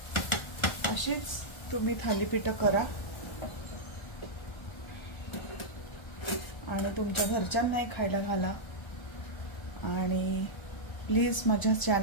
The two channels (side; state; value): right; late; 1.3 ms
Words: अशीच तुम्ही थालीपीठ करा आणि तुमच्या घरच्यांनाही खायला घाला। आणि प्लीज माझ्या